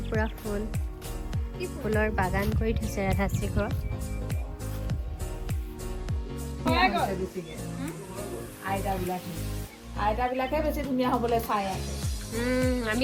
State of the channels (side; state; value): both; identical; correlation 1.00